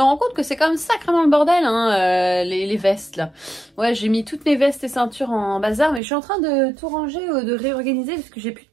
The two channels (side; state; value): left; drops out; at 6.0 s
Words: rends compte que c'est quand même sacrément le bordel, hein, les vestes là. Ouais, j'ai mis toutes mes vestes et ceintures en bazar, mais je suis en train de tout ranger, de réorganiser parce que j'ai plus de